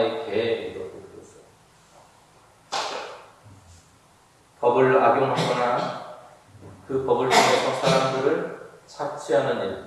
개 이렇게 불렀어요. 법을 악용하거나 그 법을 통해서 사람들을 착취하는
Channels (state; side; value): identical; both; correlation 1.00